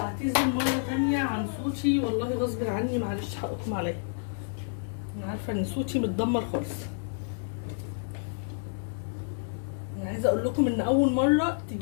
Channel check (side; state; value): right; silent; digital silence